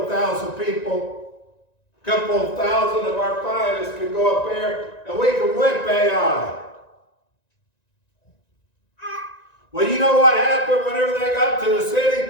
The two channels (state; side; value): late; right; 1.9 ms